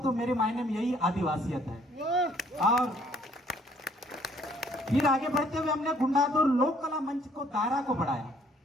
मेरे मायने में यही आदिवासियत है। और फिर आगे बढ़ते हुए हमने गुंडादुर लोक कला मंच को दायरा को बढ़ाया,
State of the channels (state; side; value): normal; both; correlation 0.62